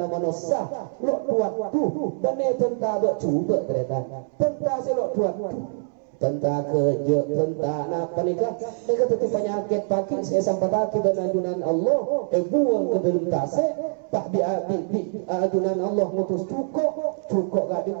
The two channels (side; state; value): left; silent; 62 dB below the other